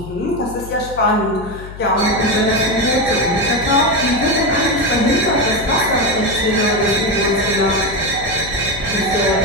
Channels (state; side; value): noise; left; hum, 13 dB below the sound